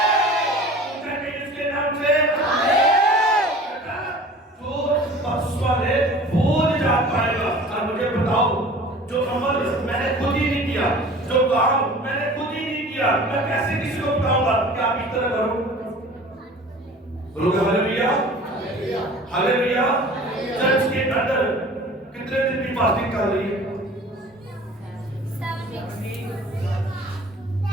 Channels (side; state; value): both; normal; correlation 0.44